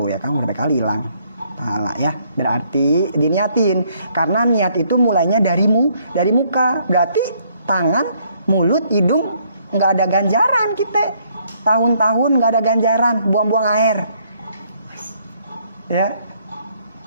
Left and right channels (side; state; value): both; inverted; correlation -0.68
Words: ya kan, berapa kali hilang pahala ya. Berarti diniatin, karena niat itu mulainya dari muka. Berarti tangan, mulut, hidung nggak ada ganjaran kita. Tahun-tahun nggak ada ganjaran, buang-buang air. Ya.